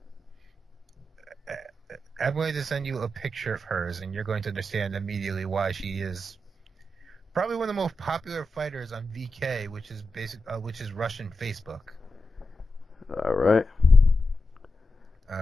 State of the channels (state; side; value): normal; both; correlation 0.89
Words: a picture of hers, and you're going to understand immediately why she is probably one of the most popular fighters on VK, which is Russian Facebook. All right.